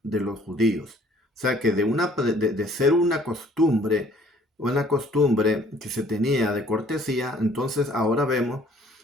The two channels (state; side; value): normal; both; correlation 0.57